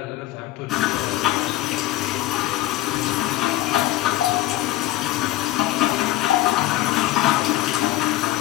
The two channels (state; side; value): quieter; right; 15.4 dB